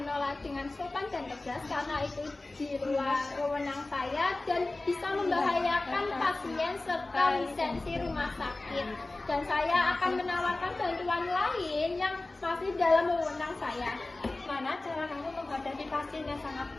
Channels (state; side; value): quieter; right; 3.0 dB